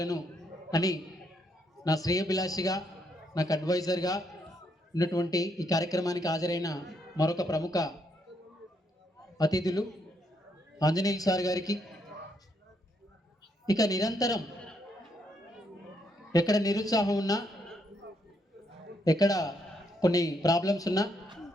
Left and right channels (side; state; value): both; normal; correlation 0.75